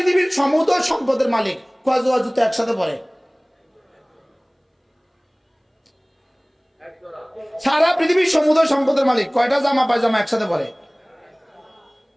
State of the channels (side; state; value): both; identical; correlation 1.00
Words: সমুদ্র সম্পদের মালিক কয়জোড়া জুতো একসাথে পরে? সারা পৃথিবীর সমুদ্র সম্পদের মালিক কয়টা জামা পায়জামা একসাথে পরে?